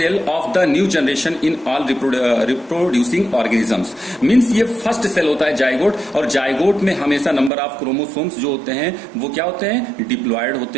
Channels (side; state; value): left; drops out; at 7.5 s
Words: of the new generation in all reproducing organisms. Means ये फर्स्ट सेल होता है जाइगोट। और जाइगोट में हमेशा नंबर ऑफ क्रोमोसोम्स जो होते हैं वो क्या होते हैं? डिप्लॉयड